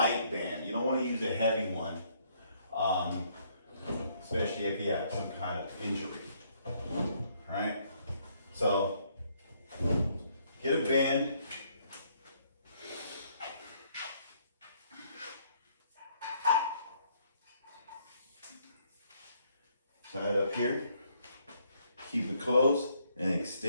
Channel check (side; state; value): both; inverted; correlation -0.69